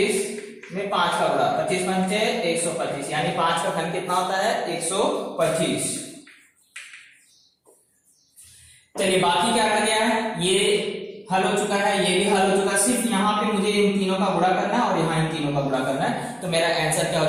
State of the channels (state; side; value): identical; both; correlation 1.00